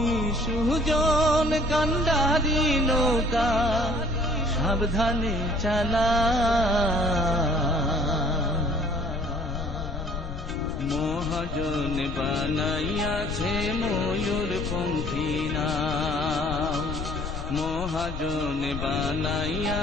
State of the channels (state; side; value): noise; left; rumble, 7 dB below the sound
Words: সুজন কান্ডারি নৌকা সাবধানে চালা মহাজন বানাইয়াছে ময়ূর পঙ্খী নাম মহাজন